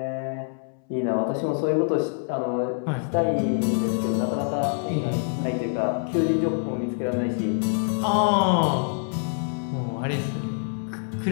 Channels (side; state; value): right; silent; 61 dB below the other